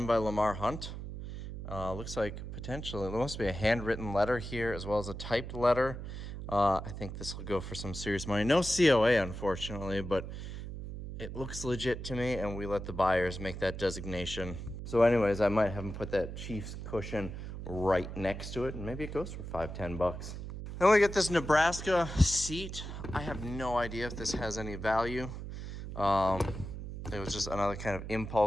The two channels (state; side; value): noise; right; hum, 8 dB below the sound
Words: by Lamar Hunt. Looks like potentially there must be a handwritten letter here as well as a typed letter. I think this will go for some serious money. No COA, unfortunately, but it looks legit to me, and we let the buyers make that designation. So anyways, I might have them put that Chiefs cushion right next to it, and maybe it goes for $5-10 bucks. Then we get this Nebraska seat. I have no idea if this has any value. It was just another kind of